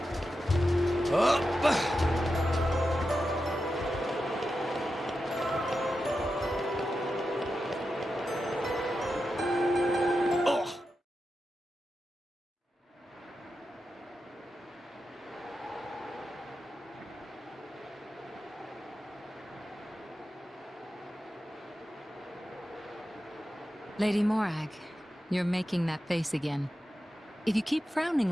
Lady Morag, you're making that face again. If you keep frowning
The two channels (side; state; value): both; normal; correlation 0.90